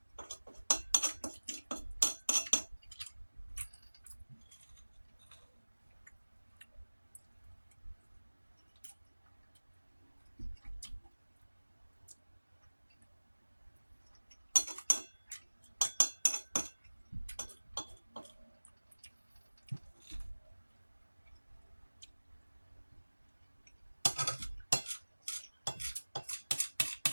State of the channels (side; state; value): both; inverted; correlation -1.00